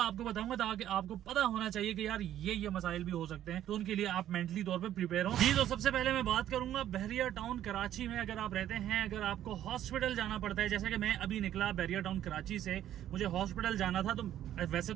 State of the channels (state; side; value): quieter; left; 11.7 dB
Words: आपको बताऊंगा ताकि आपको पता होना चाहिए कि यार ये मसाइल भी हो सकते हैं, तो उनके लिए आप मेंटली तौर पे प्रिपेयर हो जी। तो सबसे पहले मैं बात करूंगा बहरिया टाउन कराची में अगर आप रहते हैं, अगर आपको हॉस्पिटल जाना पड़ता है, जैसे कि मैं अभी निकला बहरिया टाउन कराची से, मुझे हॉस्पिटल जाना था। तो वैसे